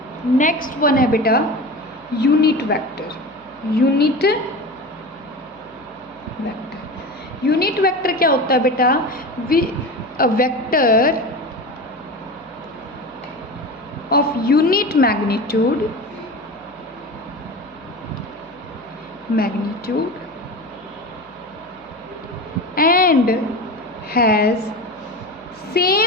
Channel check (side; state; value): left; noise; hum, 30 dB below the sound